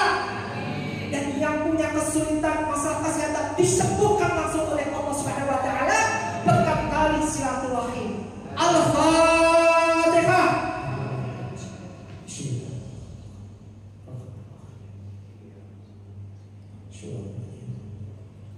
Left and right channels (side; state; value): both; identical; correlation 1.00